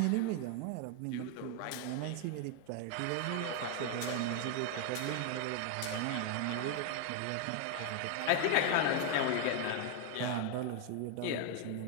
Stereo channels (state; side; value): different; both; correlation 0.00